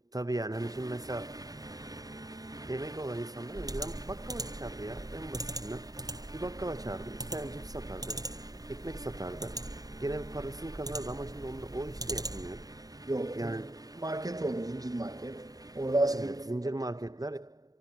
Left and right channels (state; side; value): late; left; 0.18 ms